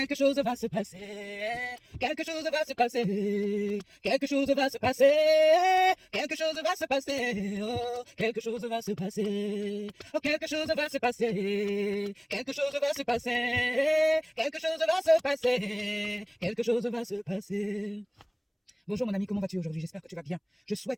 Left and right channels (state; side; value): identical; both; correlation 1.00